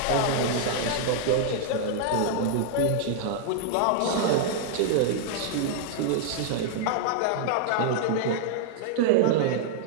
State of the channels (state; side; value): different; both; correlation -0.01